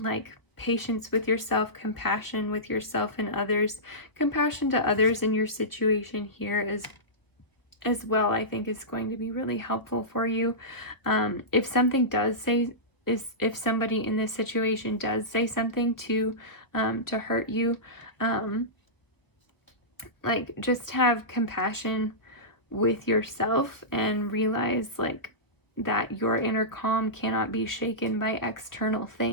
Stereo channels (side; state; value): right; late; 1.1 ms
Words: patience with yourself, compassion with yourself and others, compassion to others in your situation here as well, I think is going to be really helpful for you. If something does say, if somebody in this situation does say something to hurt you, like just have compassion with yourself and realize like that your inner calm cannot be shaken by external